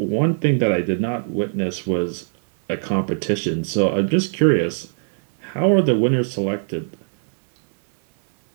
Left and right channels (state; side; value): silent; left; 65 dB below the other